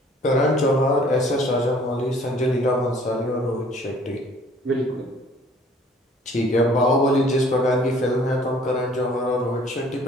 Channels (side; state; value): both; normal; correlation 0.55